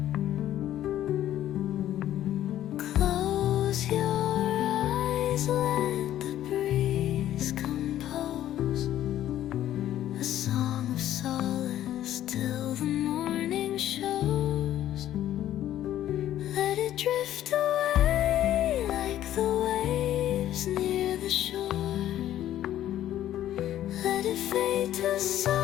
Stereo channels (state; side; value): quieter; right; 12.4 dB